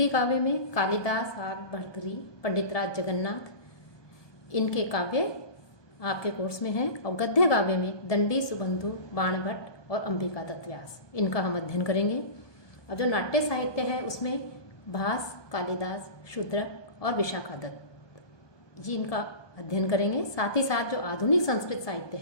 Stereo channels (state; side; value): late; right; 1.2 ms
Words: काव्य में कालिदास, आग, भर्तृहरि, पंडितराज जगन्नाथ, इनके काव्य आपके कोर्स में हैं। और गद्य काव्य में दंडी, सुबंधु, बाणभट्ट और अंबिका दत्त व्यास, इनका हम अध्ययन करेंगे। और जो नाट्य साहित्य है उसमें भास, कालिदास, शूद्रक और विशाखा दत्त, जी इनका अध्ययन करेंगे। साथ ही साथ जो आधुनिक संस्कृत साहित्य